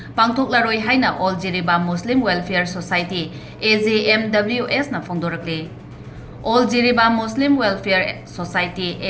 Pangthoklaroi haina All Jiribam Muslim Welfare Society AJMWS na phongdorakle. All Jiribam Muslim Welfare Society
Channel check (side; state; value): both; identical; correlation 1.00